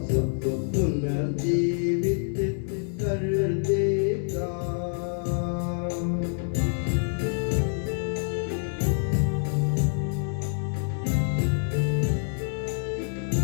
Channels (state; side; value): silent; right; digital silence